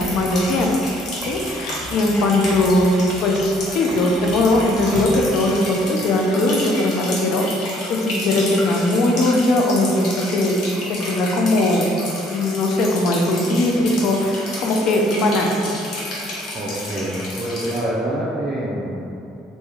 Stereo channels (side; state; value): both; normal; correlation 0.63